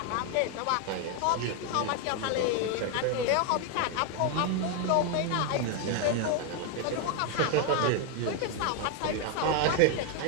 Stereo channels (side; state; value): both; different; correlation 0.01